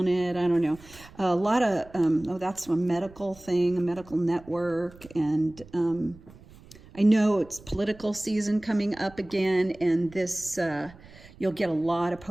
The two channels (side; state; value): right; noise; rumble, 22 dB below the sound